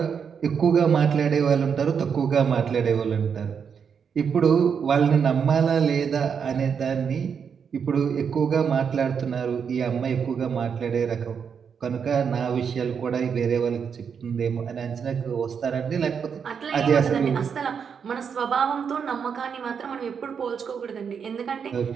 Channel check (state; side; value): quieter; left; 6.8 dB